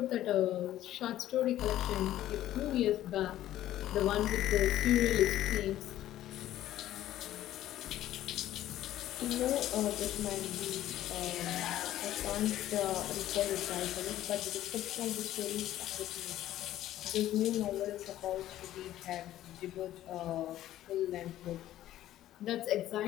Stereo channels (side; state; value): right; quieter; 13.4 dB